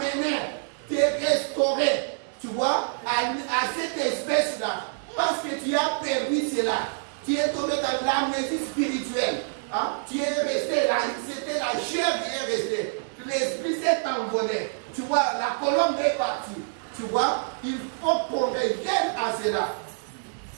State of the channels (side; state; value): left; silent; 61 dB below the other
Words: te restaurer, tu vois, à cette espèce-là. Parce que tu as perdu cela. Tu es tombé dans l'amnésie spirituelle. Tu es resté là, c'était la chair qui est restée. L'esprit s'est envolé. Tu vois, la colombe est partie. Tu vois, il faut qu'on revienne à cela.